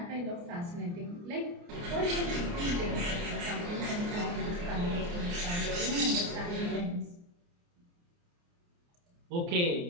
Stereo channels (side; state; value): left; late; 29 ms